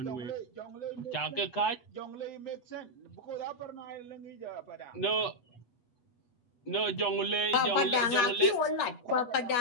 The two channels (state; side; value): late; right; 8.7 ms